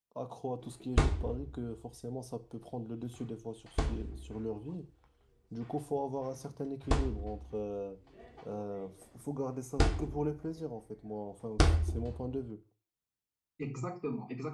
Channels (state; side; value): identical; both; correlation 1.00